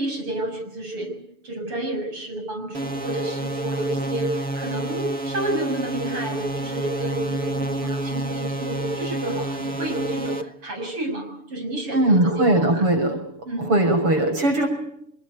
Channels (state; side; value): late; left; 6.9 ms